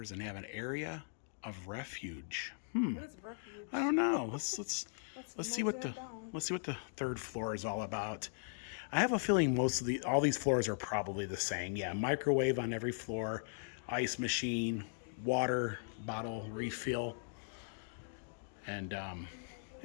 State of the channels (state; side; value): silent; right; digital silence